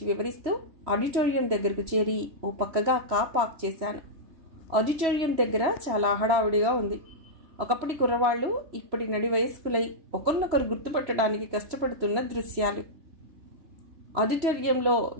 వివరిస్తూ ఆడిటోరియం దగ్గరకు చేరి ఓ పక్కగా కార్ పార్క్ చేశాను. ఆడిటోరియం దగ్గర చాలా హడావుడిగా ఉంది. ఒకప్పటి కుర్రవాళ్లు ఇప్పటి నడి వయస్కులై ఒకరినొకరు గుర్తుపట్టడానికి కష్టపడుతున్న దృశ్యాలు. ఆడిటోరియంలో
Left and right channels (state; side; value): late; left; 3.0 ms